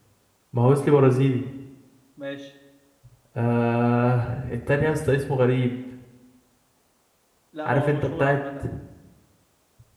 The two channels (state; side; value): identical; both; correlation 1.00